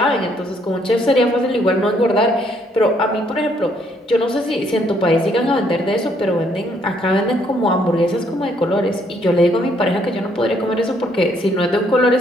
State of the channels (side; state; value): both; normal; correlation 0.69